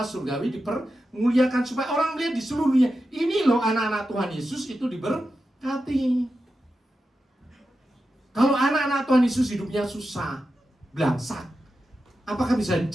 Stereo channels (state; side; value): normal; both; correlation 0.90